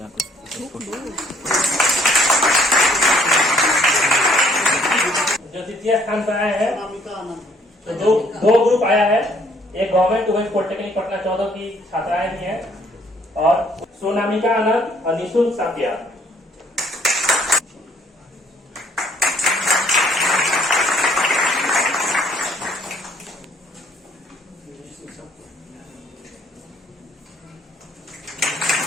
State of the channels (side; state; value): both; normal; correlation 0.63